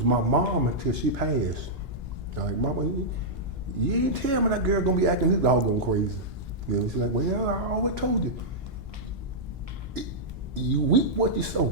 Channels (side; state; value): both; normal; correlation -0.09